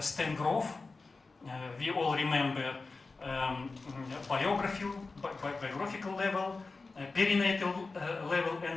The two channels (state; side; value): quieter; right; 3.9 dB